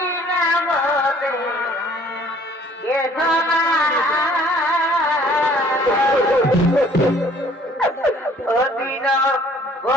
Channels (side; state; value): both; normal; correlation 0.57